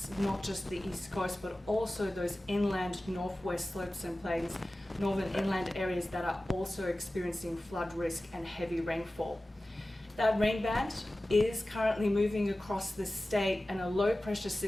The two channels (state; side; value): normal; both; correlation 0.96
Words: not just the east coast, but also those inland northwest slopes and plains, northern inland areas that are also experiencing flood risk and heavy rainfall. That rain band is currently moving across the state and a low pressure